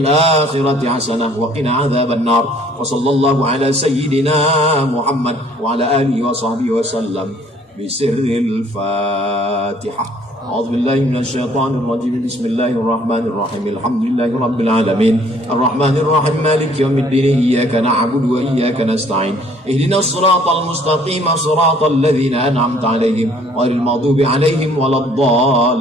حسنة وقنا عذاب النار. وصلى الله على سيدنا محمد وعلى آله وصحبه وسلم بسر الفاتحة. أعوذ بالله من الشيطان الرجيم. بسم الله الرحمن الرحيم. الحمد لله رب العالمين الرحمن الرحيم مالك يوم الدين إياك نعبد وإياك نستعين اهدنا الصراط المستقيم صراط الذين أنعمت عليهم غير المغضوب عليهم ولا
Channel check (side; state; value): both; normal; correlation 0.59